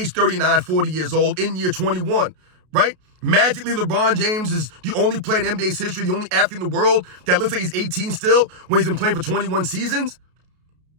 39, 40 years old in year 21, right? Magically, LeBron James is the only player in NBA's history, the only athlete in the world that looks like he's 18 still when he's been playing for 21 seasons.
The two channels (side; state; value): left; late; 33 ms